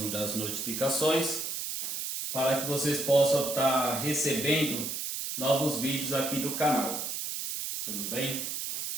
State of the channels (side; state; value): right; noise; hiss, 4 dB below the sound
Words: das notificações para que vocês possam estar recebendo novos vídeos aqui do canal. Tudo bem?